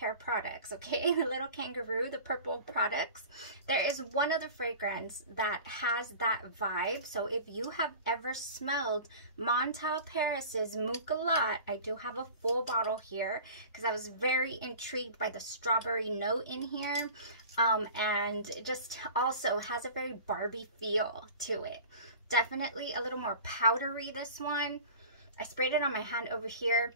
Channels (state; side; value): inverted; both; correlation -0.39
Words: products, okay? The little kangaroo, the purple products. There is one other fragrance that has that vibe. So if you have ever smelled Montal Paris's Moukalat, I do have a full bottle here because I was very intrigued by the strawberry note in here. And it just also has a very Barbie feel to it. Definitely a little more powdery, this one. I sprayed it on my hand over here.